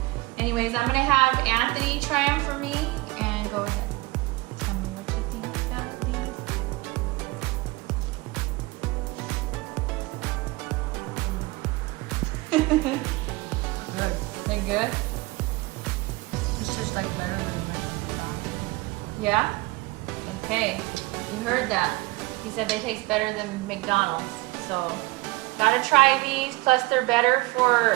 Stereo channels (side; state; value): left; quieter; 21.9 dB